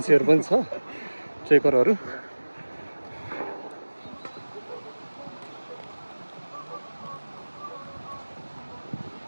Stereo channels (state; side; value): inverted; both; correlation -1.00